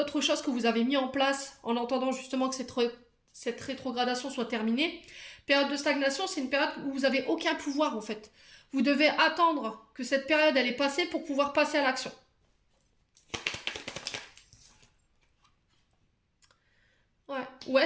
choses que vous avez mis en place en entendant justement que cette rétrogradation soit terminée. Période de stagnation, c'est une période où vous n'avez aucun pouvoir en fait. Vous devez attendre que cette période elle est passée pour pouvoir passer à l'action. Ouais. Ou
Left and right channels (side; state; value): both; identical; correlation 1.00